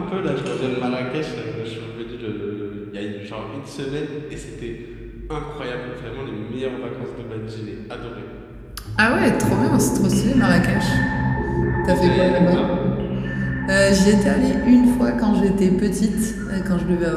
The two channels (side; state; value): both; identical; correlation 1.00